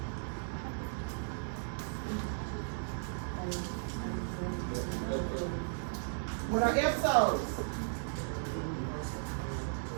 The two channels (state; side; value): silent; left; 54 dB below the other